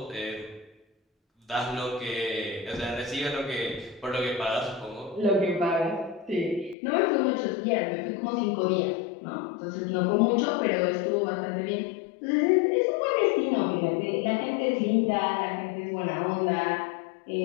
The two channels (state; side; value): drops out; right; at 6.8 s